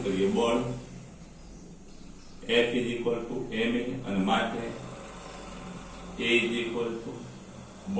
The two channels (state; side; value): identical; both; correlation 1.00